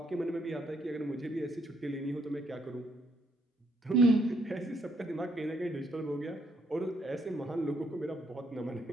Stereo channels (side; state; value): both; normal; correlation 0.71